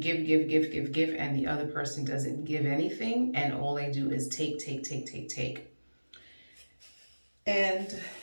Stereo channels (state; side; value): inverted; both; correlation -1.00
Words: and the other person doesn't give anything, and all they do is take. And